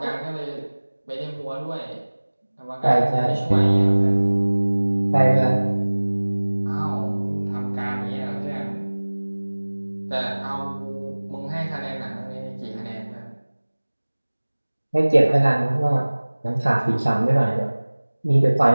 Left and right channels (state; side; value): inverted; both; correlation -1.00